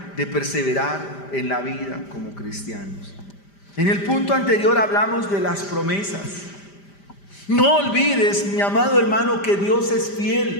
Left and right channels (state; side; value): late; right; 5.0 ms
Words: de perseverar en la vida como cristianos. En el punto anterior hablamos de las promesas. No olvides, mi amado hermano, que Dios es